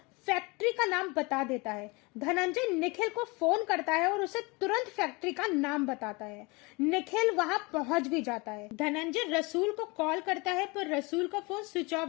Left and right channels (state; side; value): quieter; right; 26.7 dB